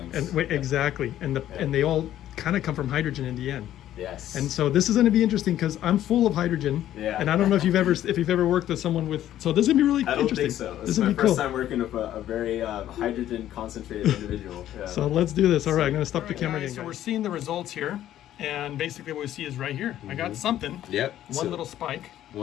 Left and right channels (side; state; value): right; quieter; 12.3 dB